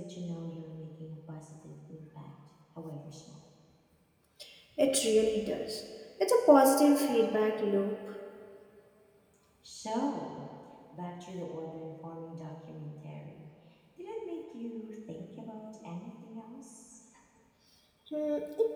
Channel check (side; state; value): both; identical; correlation 1.00